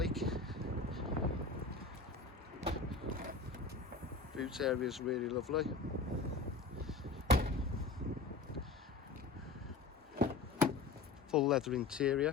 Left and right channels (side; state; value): right; quieter; 4.1 dB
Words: Boot area is really lovely. Full leather